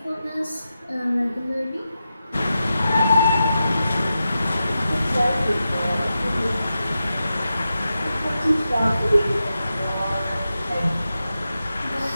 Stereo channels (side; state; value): both; inverted; correlation -0.90